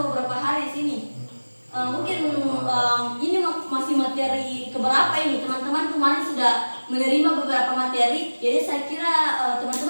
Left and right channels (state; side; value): inverted; both; correlation -1.00